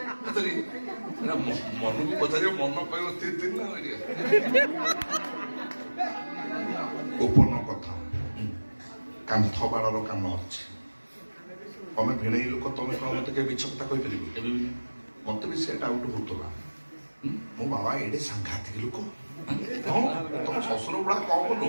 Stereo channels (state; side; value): inverted; both; correlation -1.00